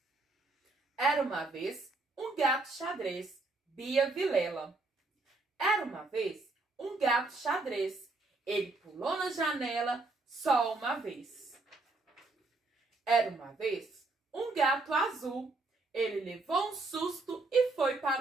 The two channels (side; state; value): left; quieter; 3.3 dB